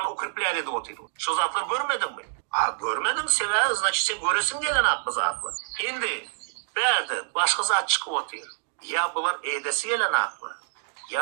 укрепляли de oturuyor. Şu zatlar görmedin mi? Görmedin sever, значит sen göresin gelen aklı zatlar. Şimdi, berde başka zat çıkıp oturuyor. Ya bunlar edesi gelen aklı.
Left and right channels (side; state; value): left; silent; digital silence